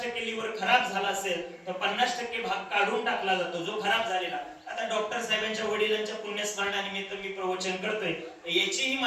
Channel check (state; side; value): identical; both; correlation 1.00